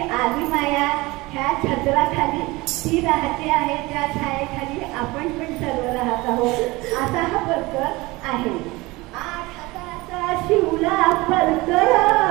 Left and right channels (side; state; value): left; quieter; 22.0 dB